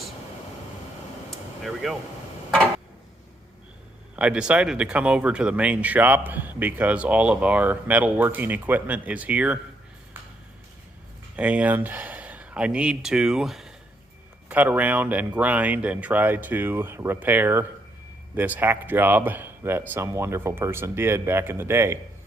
There we go. I decided to come over to the main shop because all of our metalworking equipment is here, and I need to cut around and grind and try to repair this hack job that some wonderful person did back in the day.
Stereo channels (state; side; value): normal; both; correlation 0.75